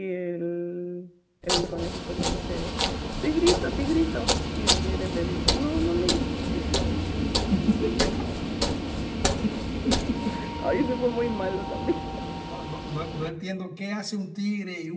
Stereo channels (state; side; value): identical; both; correlation 1.00